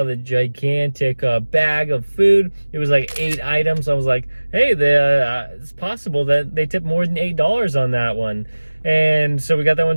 the gigantic bag of food. It was like 8 items. I was like, hey, it's possible that they tipped more than $8 on that one. And so we got that one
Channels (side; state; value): both; inverted; correlation -1.00